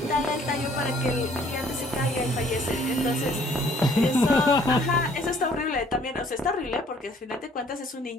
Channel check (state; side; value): normal; both; correlation 0.60